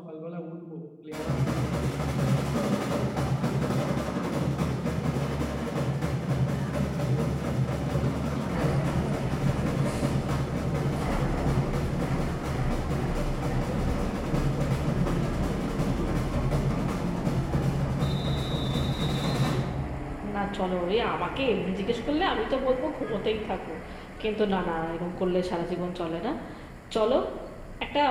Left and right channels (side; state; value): both; identical; correlation 1.00